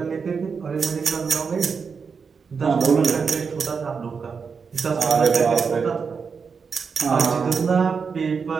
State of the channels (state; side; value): quieter; left; 5.7 dB